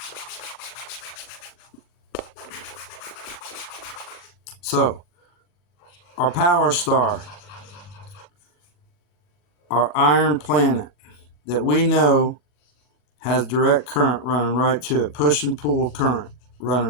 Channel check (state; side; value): late; right; 40 ms